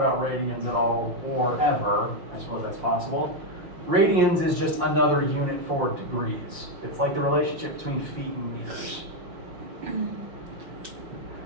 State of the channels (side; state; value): left; late; 5.8 ms